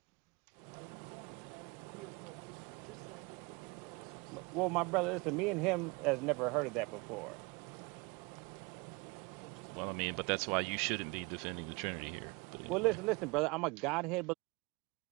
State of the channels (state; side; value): quieter; left; 27.1 dB